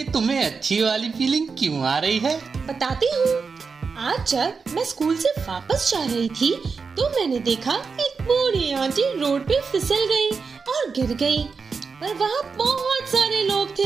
तुम्हें अच्छी वाली फीलिंग क्यों आ रही है? बताती हूँ। आज जब मैं स्कूल से वापस जा रही थी तो मैंने देखा एक बूढ़ी आंटी रोड पे फिसल गई और गिर गई। पर वहाँ बहुत सारे लोग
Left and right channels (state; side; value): quieter; left; 5.1 dB